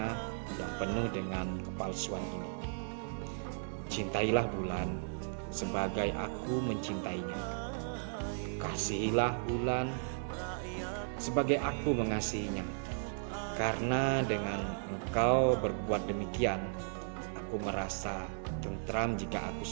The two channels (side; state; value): left; silent; digital silence